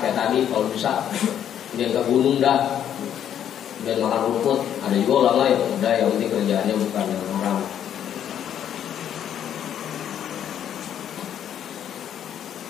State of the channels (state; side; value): quieter; right; 9.8 dB